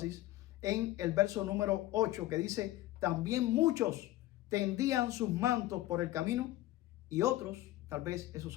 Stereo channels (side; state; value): right; quieter; 15.8 dB